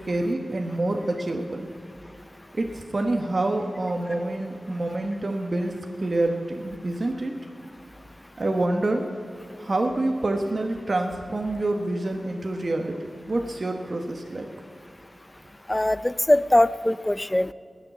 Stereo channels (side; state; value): both; normal; correlation 0.97